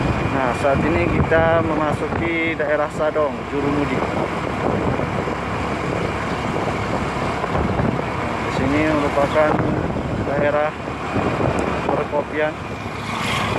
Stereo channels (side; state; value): both; identical; correlation 1.00